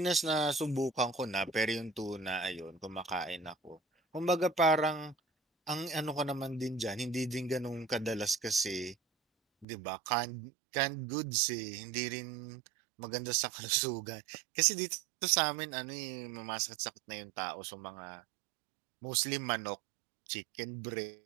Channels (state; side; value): drops out; left; at 9.7 s